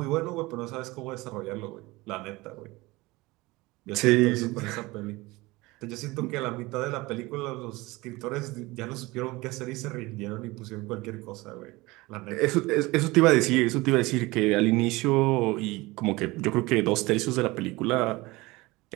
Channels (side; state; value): left; quieter; 21.6 dB